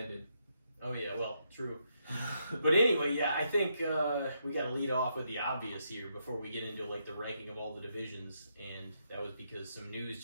Oh yeah, well, true. But anyway, yeah, I think we got to lead off with the obvious here before we get into like the ranking of all the divisions, and that was because some news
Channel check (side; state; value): both; inverted; correlation -0.79